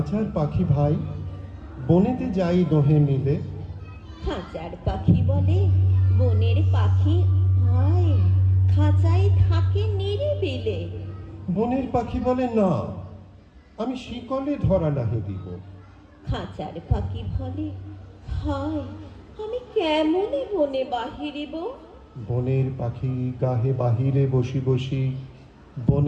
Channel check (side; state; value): both; identical; correlation 1.00